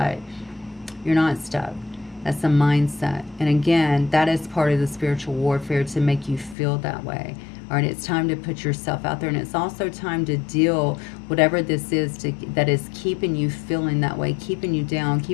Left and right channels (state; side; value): drops out; right; at 6.6 s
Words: you're not stuck. That's a mindset. And again, that is part of the spiritual warfare, to make you feel that way. All right, it's time to put yourself out there, and it's also time to deal whatever this is that is keeping you feeling that way, keeping you down,